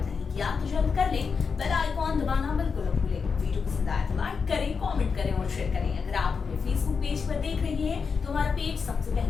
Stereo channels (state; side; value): quieter; right; 5.5 dB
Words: नहीं किया तो जल्द कर लें। बेल आइकॉन दबाना बिल्कुल न भूलें। वीडियो पसंद आए तो लाइक करें, कमेंट करें और शेयर करें। अगर आप हमें फेसबुक पेज पर देख रही हैं तो हमारा पेज सबसे